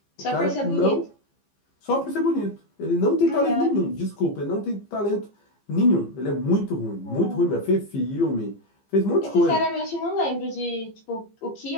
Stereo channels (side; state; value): right; late; 15 ms